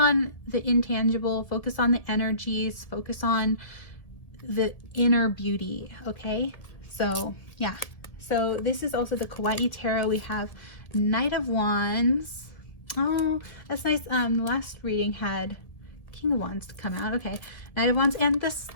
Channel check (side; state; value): right; late; 1.8 ms